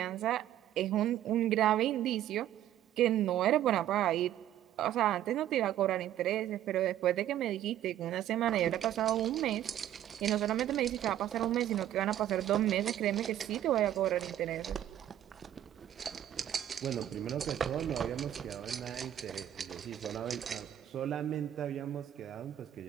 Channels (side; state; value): left; quieter; 11.8 dB